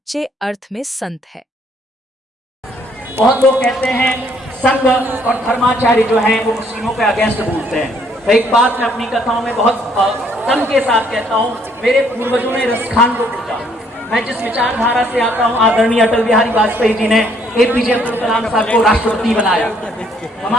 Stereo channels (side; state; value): both; normal; correlation 0.66